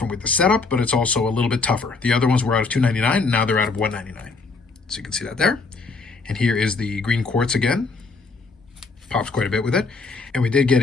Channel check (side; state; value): right; quieter; 4.0 dB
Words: with the setup, but it's also a little bit tougher. The other ones were out of $2.99, and now they're out of $1.99. So you can see that there. And here is the green quartz again. Pops quite a bit with it. And we did get